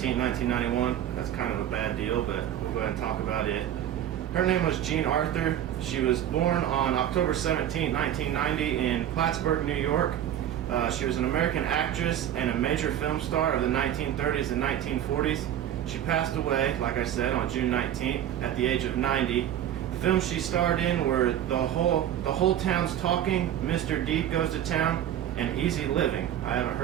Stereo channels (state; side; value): quieter; left; 11.1 dB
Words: 1991. That's kind of a bad deal, but we'll go ahead and talk about it. Her name was Jean Arthur. She was born on October 17, 1990 in Plattsburgh, New York. She was an American actress and a major film star of the 1930s and 1940s. She passed away, like I said, on June 19th at the age of 90. The films she starred in were The Whole Town's Talking, Mr. Deep Goes to Town, and Easy Living. I haven't